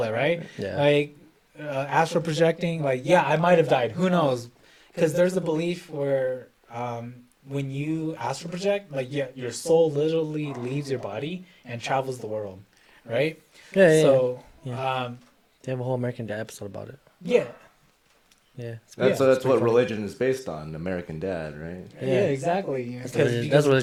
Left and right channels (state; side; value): identical; both; correlation 1.00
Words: it, right? Yeah. Like astral projecting. Like, yeah, I might have died. Who knows? Because there's a belief where when you astral project, like, yeah, your soul literally leaves your body and travels the world, right? Yeah. So, They have a whole American Dad episode about it. yeah. Yeah. That's what religion is based on. American Dad, right? Yeah, exactly. That's Because